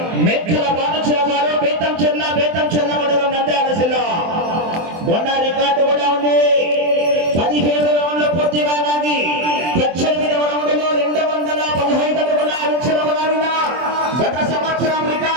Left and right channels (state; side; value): late; left; 24 ms